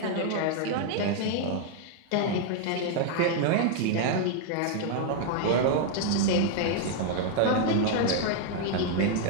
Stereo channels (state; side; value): different; both; correlation 0.00